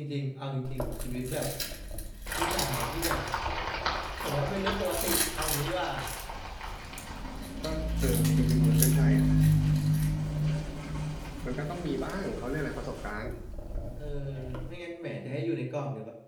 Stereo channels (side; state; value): both; identical; correlation 1.00